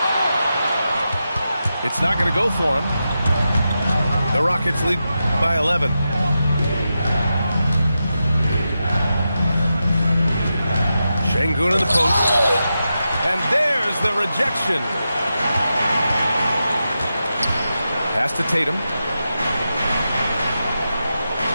It's not going to go for him. The Rockets lead by 11. Şengün in the post. And there's the rejection. Pass to Tatum.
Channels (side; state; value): both; inverted; correlation -0.89